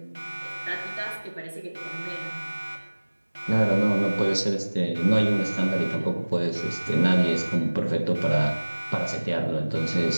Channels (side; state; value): both; inverted; correlation -1.00